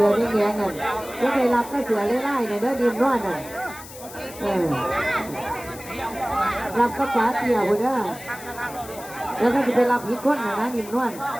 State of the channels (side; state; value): left; noise; hiss, 16 dB below the sound